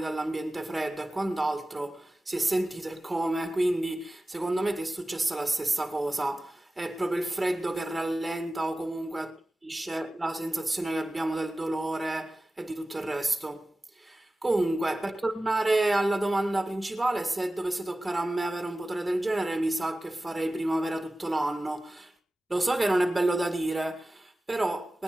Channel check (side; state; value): both; normal; correlation 0.96